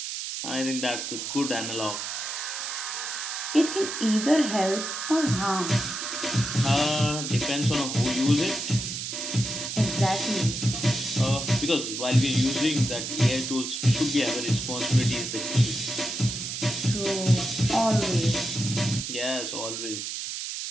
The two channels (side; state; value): right; noise; hiss, 5 dB below the sound